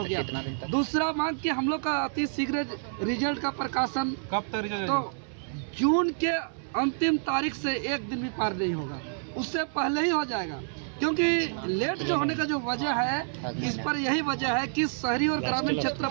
गया। दूसरा मांग कि हम लोग का अति शीघ्र रिजल्ट का प्रकाशन कब तक रिजल्ट? तो जून के अंतिम तारीख से एक दिन भी पार नहीं होगा, उससे पहले ही हो जाएगा। क्योंकि लेट जो होने का जो वजह है, इस पर यही वजह है कि शहरी और ग्रामीण क्षेत्र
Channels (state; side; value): silent; left; 59 dB below the other